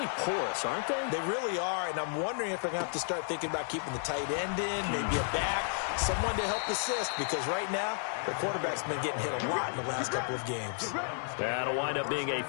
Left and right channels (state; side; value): silent; right; 56 dB below the other